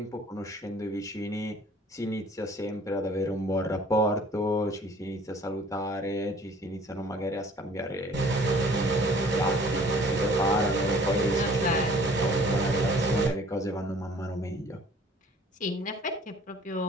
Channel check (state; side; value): normal; both; correlation 0.54